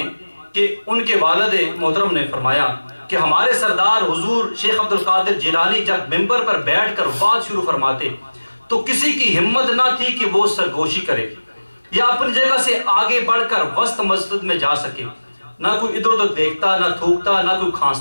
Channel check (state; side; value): inverted; both; correlation -1.00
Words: کہ ان کے والد محترم نے فرمایا کہ ہمارے سردار حضور شیخ عبد القادر جیلانی جب ممبر پر بیٹھ کر بات شروع فرماتے تو کسی کی ہمت نہ تھی کہ وہ سرگوشی کرے یا اپنی جگہ سے آگے بڑھ کر وسط مسجد میں جا سکے۔ نہ کوئی ادھر ادھر دیکھتا، نہ تھوکتا، نہ کوئی